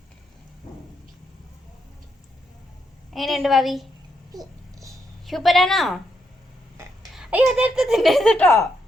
എങ്ങനെയുണ്ട് ഭാവി? സൂപ്പറാണോ? അയ്യോ അതെടുത്ത് തിന്നരുത് കേട്ടോ.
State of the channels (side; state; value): both; normal; correlation 0.80